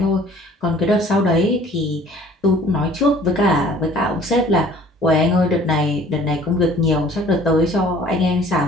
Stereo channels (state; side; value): normal; both; correlation 0.51